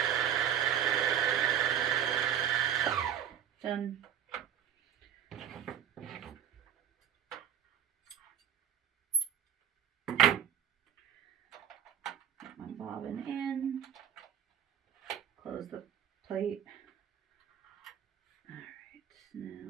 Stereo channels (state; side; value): quieter; left; 9.5 dB